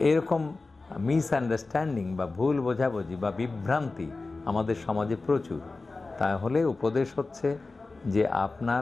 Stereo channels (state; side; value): quieter; right; 3.6 dB